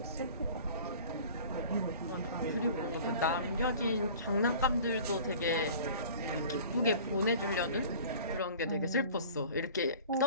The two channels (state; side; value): inverted; both; correlation -0.44